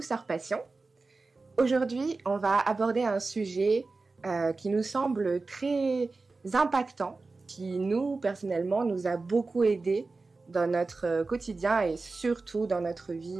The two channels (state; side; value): quieter; left; 3.8 dB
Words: Passion. Aujourd'hui, on va aborder un sujet qui nous semble très impactant, qui nous, personnellement, nous a beaucoup aidés dans notre quotidien et surtout dans notre